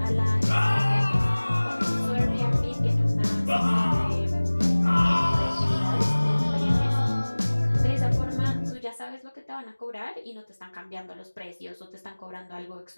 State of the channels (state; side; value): inverted; both; correlation -1.00